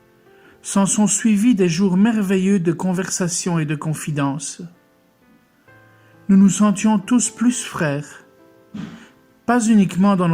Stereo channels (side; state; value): both; identical; correlation 1.00